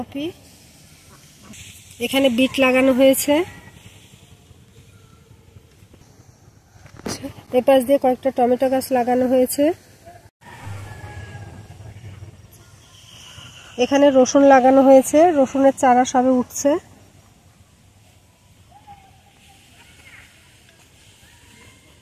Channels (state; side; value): identical; both; correlation 1.00